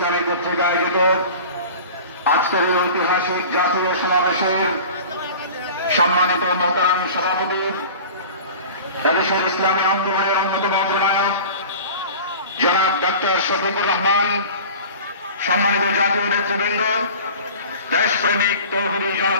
কর্তৃক আয়োজিত আজকের এই ঐতিহাসিক জাতীয় সমাবেশের সম্মানিত মোহতারাম সভাপতি এদেশের ইসলামী আন্দোলনের অন্যতম অগ্রনায়ক জনাব ডক্টর শফিকুর রহমান, সম্মানিত জাতীয় নেতৃবৃন্দ, দেশপ্রেমিক তৌহিদি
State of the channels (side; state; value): both; inverted; correlation -0.39